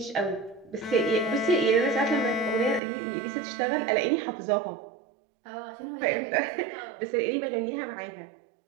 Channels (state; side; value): drops out; left; at 2.8 s